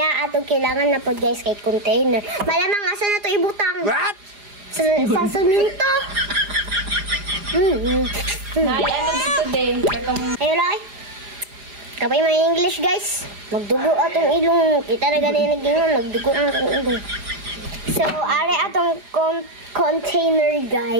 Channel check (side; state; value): left; late; 4.9 ms